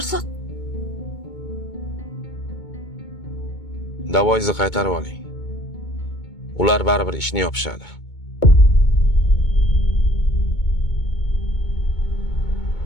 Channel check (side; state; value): right; late; 2.2 ms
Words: Davoingizni qaytarib oling. Ular baribir ishni yopishadi.